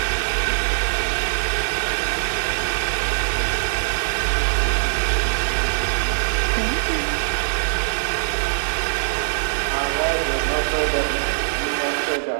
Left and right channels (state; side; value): silent; left; 64 dB below the other